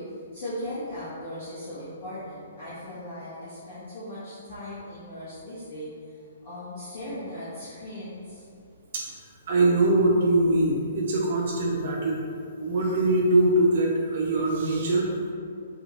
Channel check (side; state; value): both; inverted; correlation -0.61